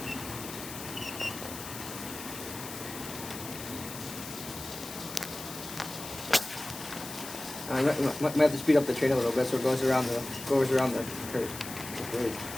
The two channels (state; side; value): noise; left; hiss, 11 dB below the sound